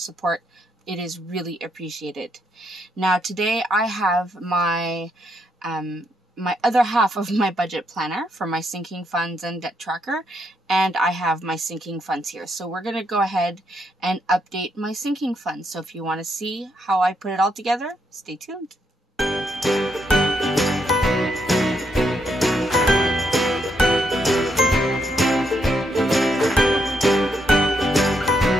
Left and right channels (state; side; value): normal; both; correlation 0.77